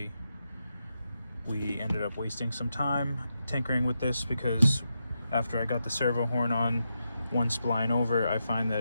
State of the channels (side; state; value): both; inverted; correlation -0.86